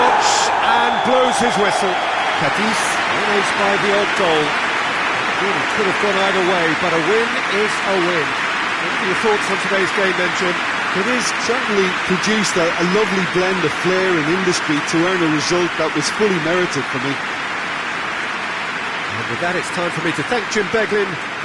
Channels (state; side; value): identical; both; correlation 1.00